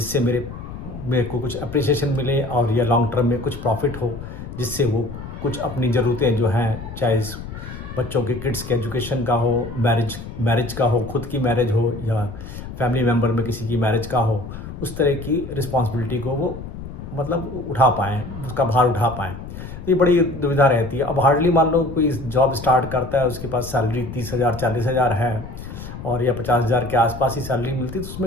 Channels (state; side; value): noise; left; rumble, 11 dB below the sound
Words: मेरे मेरे को कुछ अप्रिसिएशन मिले और या लॉन्ग टर्म में कुछ प्रॉफिट हो, जिससे वो कुछ अपनी ज़रूरतें जो हैं, चाहे बच्चों के किड्स के एजुकेशन का हो, मैरिज का हो, खुद की मैरिज हो या फैमिली मेम्बर में किसी की मैरिज का हो, उस तरह की रिस्पॉन्सिबिलिटी को वो मतलब उठा पाएँ, उसका भार उठा पाएँ। तो ये बड़ी दुविधा रहती है। अब हार्डली मान लो कोई जॉब स्टार्ट करता है, उसके पास सैलरी 30,000 40,000 है और या 50,000 के आसपास ही सैलरी मिलती है, तो